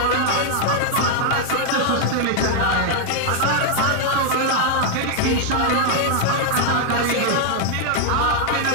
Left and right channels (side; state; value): both; different; correlation 0.00